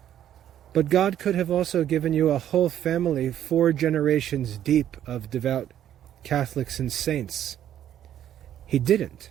But God could have also given you a whole family, 4 generations deep of devout Catholics and saints. He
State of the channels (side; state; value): left; quieter; 10.9 dB